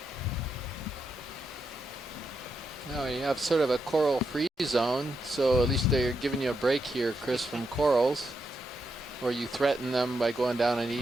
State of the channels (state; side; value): normal; both; correlation 0.83